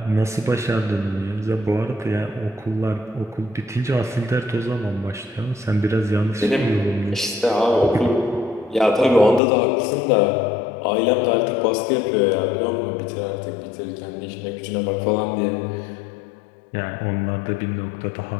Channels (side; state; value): right; drops out; at 9.4 s